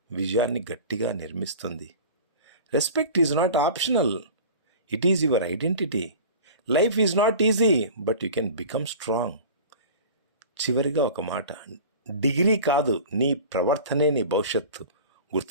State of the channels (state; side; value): inverted; both; correlation -0.38